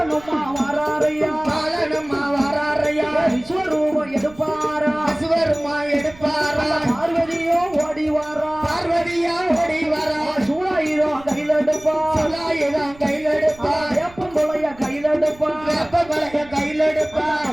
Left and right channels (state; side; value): noise; right; rumble, 22 dB below the sound